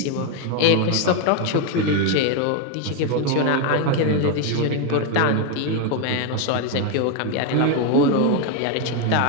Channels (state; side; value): different; both; correlation 0.02